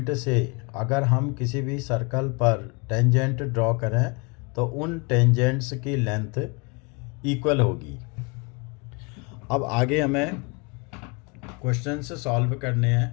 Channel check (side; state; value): right; quieter; 30.4 dB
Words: से अगर हम किसी भी सर्कल पर टेंजेंट ड्रॉ करें तो उन टेंजेंट्स की लेंथ इक्वल होगी। अब आगे हमें क्वेश्चंस सॉल्व करने